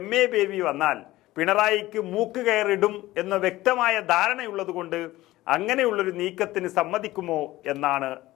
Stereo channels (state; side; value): quieter; right; 17.1 dB